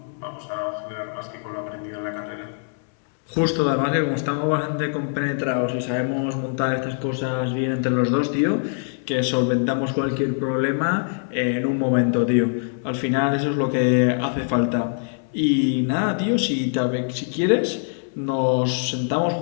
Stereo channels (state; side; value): silent; right; digital silence